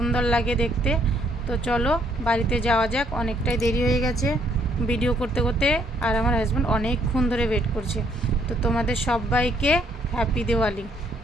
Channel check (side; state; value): both; normal; correlation 0.68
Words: লাগে দেখতে। তো চলো বাড়িতে যাওয়া যাক, অনেকটাই দেরি হয়ে গেছে ভিডিও করতে করতে, আর আমার হাজব্যান্ড অনেকক্ষণ ধরে ওয়েট করছে। তো তোমাদের সবাইকে হ্যাপি